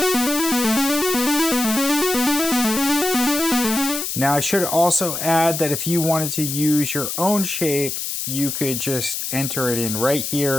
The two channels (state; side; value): noise; left; hiss, 4 dB below the sound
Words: Now I should also add that if you wanted to use your own shape, you could just enter it in right